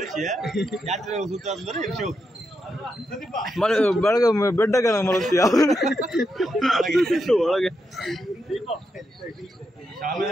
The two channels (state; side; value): normal; both; correlation 0.84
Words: ಬೆಳಗ್ಗೆ ಬೆಡ್ಡಾಗ ಮಲಗ್ತೀಯ ಒಳಗೆ